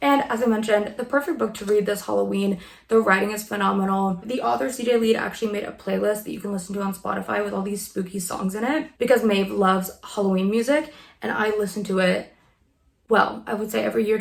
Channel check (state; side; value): identical; both; correlation 1.00